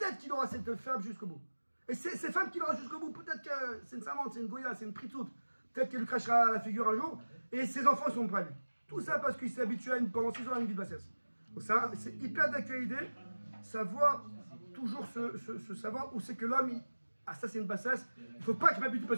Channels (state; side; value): inverted; both; correlation -1.00